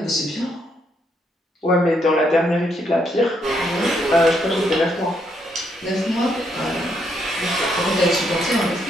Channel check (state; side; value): normal; both; correlation 0.75